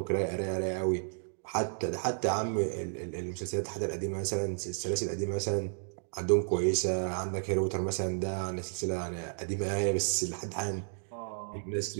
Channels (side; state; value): left; silent; digital silence